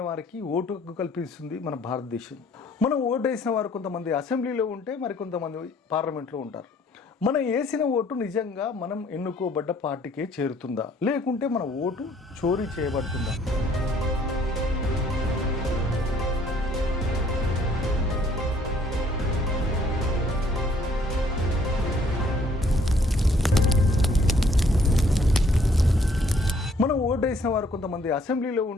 వారికి ఓటు హక్కు కల్పిస్తుంది మన భారతదేశం. మనం ఓటు వేసిన వారు కొంతమంది అసెంబ్లీలో ఉంటే మరికొంతమంది పార్లమెంట్లో ఉంటారు. మనం వేసిన ఓటు నిజంగా మనం ఎన్నుకోబడ్డ పార్టీకే చేరుతుందా, లేకుంటే మన ఓటు చోరీ చేయబడుతుందా? మనం ఓటు వేసిన వారు కొంతమంది అసెంబ్లీలో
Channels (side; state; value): both; normal; correlation 0.62